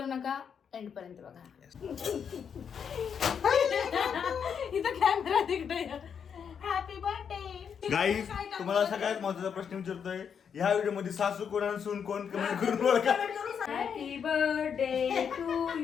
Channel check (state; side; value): quieter; right; 7.3 dB